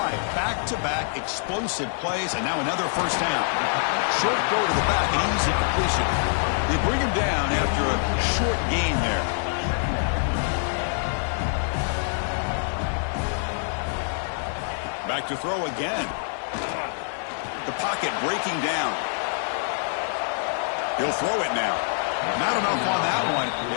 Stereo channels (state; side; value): silent; right; 61 dB below the other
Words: Back-to-back explosive plays, and now another first down. Short throw to the back, an easy completion. They bring him down after a short gain there. Back to throw again. The pocket breaking down. He'll throw it now. Not enough on that one.